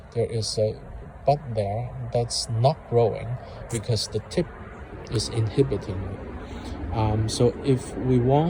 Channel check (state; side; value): identical; both; correlation 1.00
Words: There is a bud there that's not growing because the tip is inhibiting it. So if we